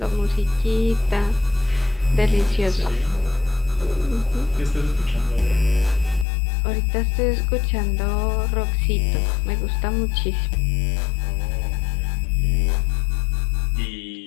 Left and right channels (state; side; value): drops out; right; at 6.2 s